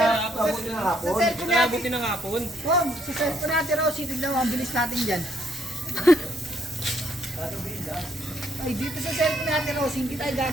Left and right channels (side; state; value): both; normal; correlation 0.70